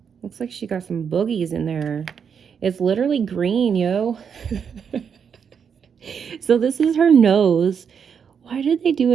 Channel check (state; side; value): quieter; left; 7.0 dB